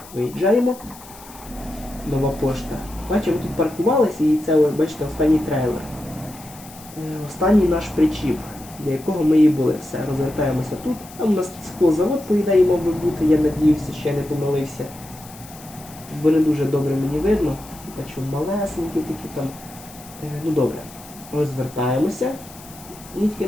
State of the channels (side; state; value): left; noise; hiss, 19 dB below the sound